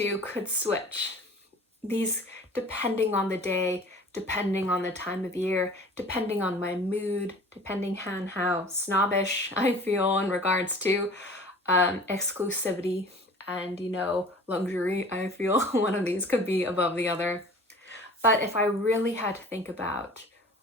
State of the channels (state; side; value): normal; both; correlation 0.45